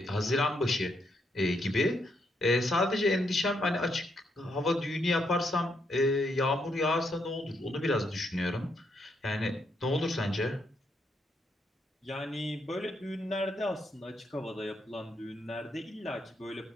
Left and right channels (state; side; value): normal; both; correlation 0.77